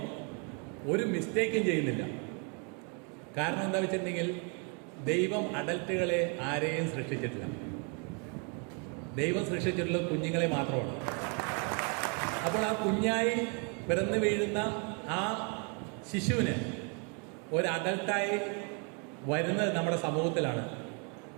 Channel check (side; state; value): left; quieter; 36.8 dB